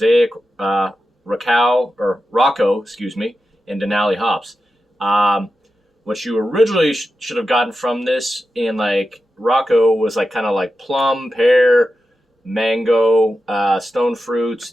Rocco, and Denali hops. What you originally should have gotten from this in Rocco was kind of plum, pear, mango, stone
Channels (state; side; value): normal; both; correlation 0.91